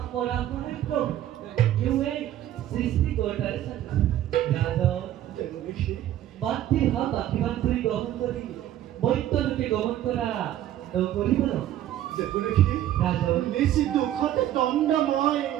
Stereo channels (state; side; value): quieter; left; 12.5 dB